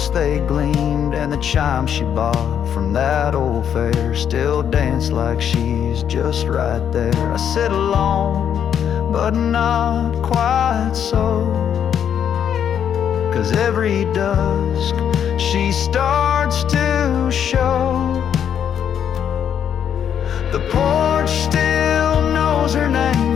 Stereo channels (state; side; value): quieter; right; 8.8 dB